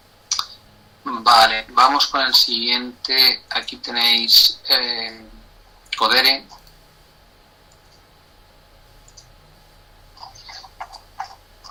Vale, vamos con el siguiente. Aquí tenéis Codere.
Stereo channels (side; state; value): both; identical; correlation 1.00